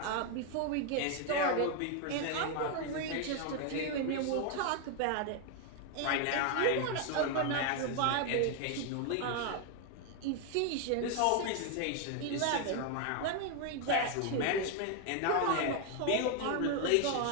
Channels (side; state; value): both; different; correlation 0.01